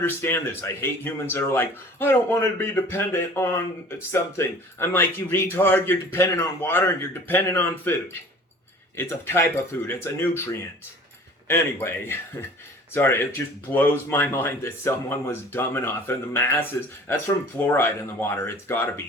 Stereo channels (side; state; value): both; normal; correlation 0.46